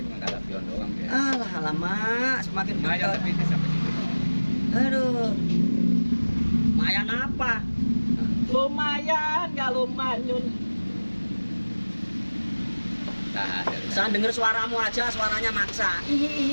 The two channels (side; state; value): both; inverted; correlation -1.00